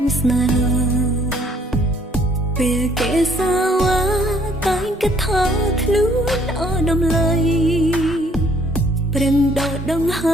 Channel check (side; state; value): both; normal; correlation 0.63